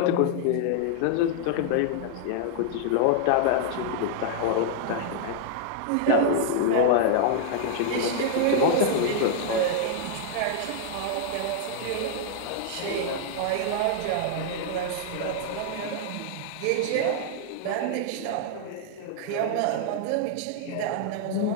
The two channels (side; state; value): both; different; correlation 0.00